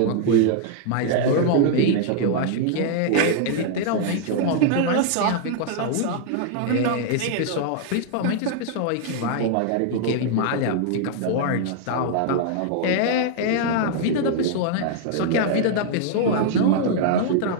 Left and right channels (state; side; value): different; both; correlation -0.01